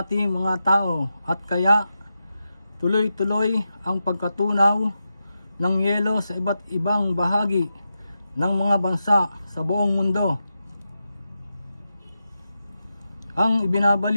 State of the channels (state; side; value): inverted; both; correlation -0.89